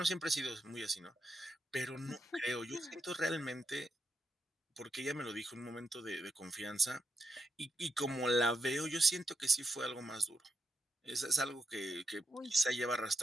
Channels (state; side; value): normal; both; correlation 0.84